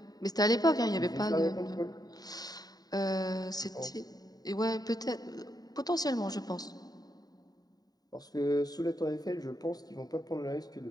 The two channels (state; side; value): late; right; 0.18 ms